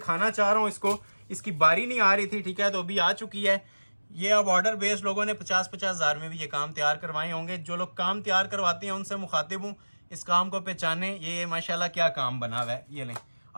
चाह रहा हूँ इसको। इसकी बारी नहीं आ रही थी, ठीक है, तो अभी आ चुकी है। ये अब ऑर्डर बेस्ड लोगों ने 50-50 हज़ार में भी ये काम तैयार करवाए होंगे। जो लोग काम तैयार करवाते हैं उनसे मुखातिब हूँ, इस काम को पहचाने। ये माशाल्लाह क्या काम बना हुआ है। ये लें,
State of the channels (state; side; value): inverted; both; correlation -1.00